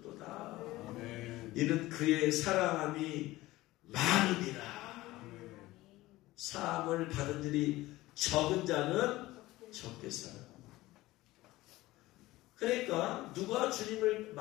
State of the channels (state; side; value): quieter; right; 18.0 dB